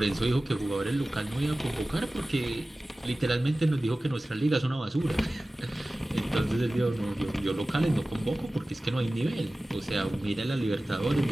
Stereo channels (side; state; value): both; normal; correlation 0.97